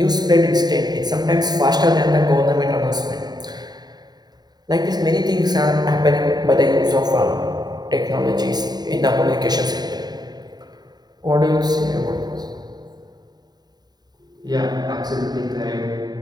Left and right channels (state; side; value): late; left; 0.20 ms